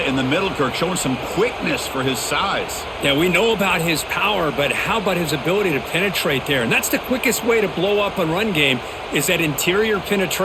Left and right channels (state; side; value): identical; both; correlation 1.00